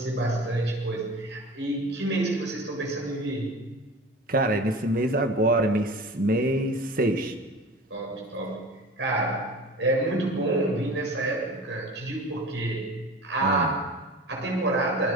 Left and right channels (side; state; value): both; normal; correlation 0.37